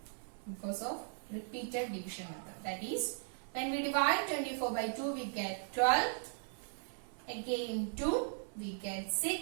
Because of repeated division method. That is, when we divide 24 by 2 we get 12. Again 2 we get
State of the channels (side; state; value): left; silent; 53 dB below the other